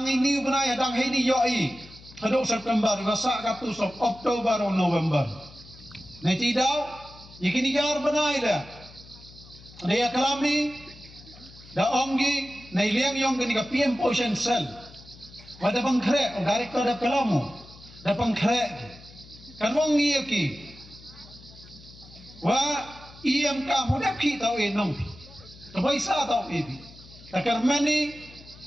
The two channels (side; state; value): left; noise; hum, 21 dB below the sound